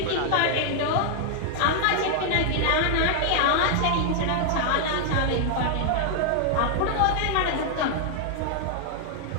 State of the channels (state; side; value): different; both; correlation 0.00